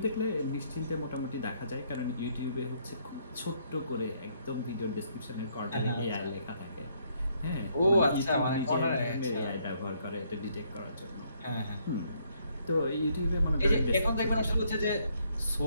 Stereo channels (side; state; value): both; inverted; correlation -0.70